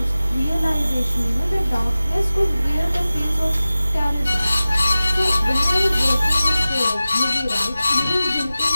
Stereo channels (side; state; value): both; inverted; correlation -0.96